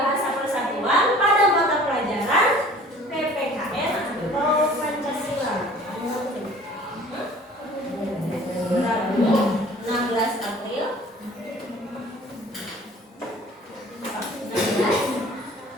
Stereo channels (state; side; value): normal; both; correlation 0.48